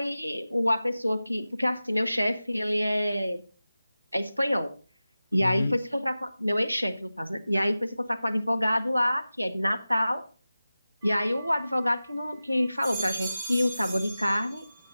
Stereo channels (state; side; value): inverted; both; correlation -0.96